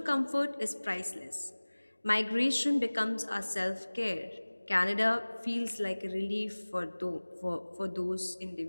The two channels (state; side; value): inverted; both; correlation -1.00